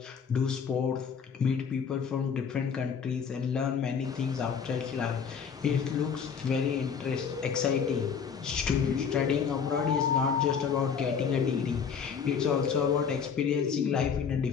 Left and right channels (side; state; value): right; quieter; 6.6 dB